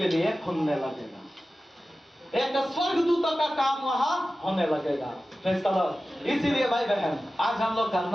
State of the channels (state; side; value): normal; both; correlation 0.95